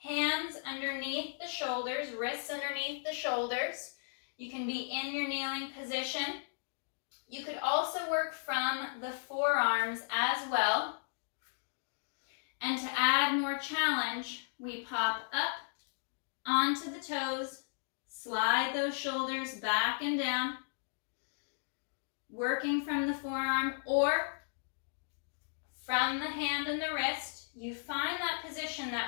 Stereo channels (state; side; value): silent; right; digital silence